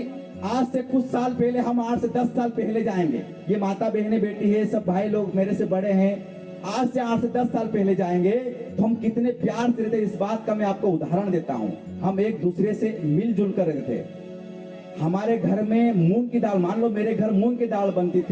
आज से कुछ साल पहले, हम 8 से 10 साल पहले जाएंगे, ये माता बहने बेटी है, सब भाई लोग मेरे से बड़े हैं, आज से 8 से 10 साल पहले जाएंगे तो हम कितने प्यार से रहते। इस बात का मैं आपको उदाहरण देता हूँ। हम एक दूसरे से मिलजुल कर रहते थे। हमारे घर में मूंग की दाल, मान लो मेरे घर मूंग की दाल बनती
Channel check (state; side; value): identical; both; correlation 1.00